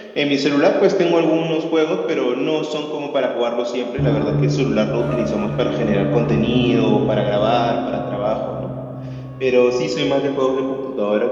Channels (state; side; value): identical; both; correlation 1.00